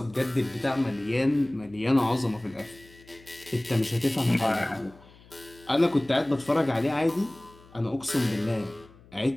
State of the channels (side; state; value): left; noise; hum, 25 dB below the sound